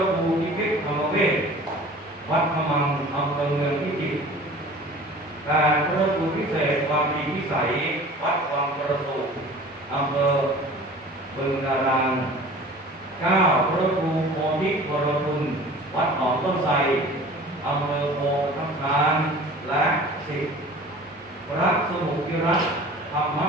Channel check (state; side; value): normal; both; correlation 0.43